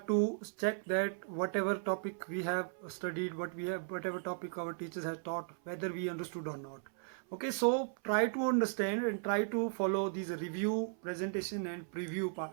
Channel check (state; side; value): silent; left; 54 dB below the other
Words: to check that whatever topic we have studied, whatever topic our teachers have taught, whether we understood or not. Okay, so try to understand and try to follow these review, presentation and preview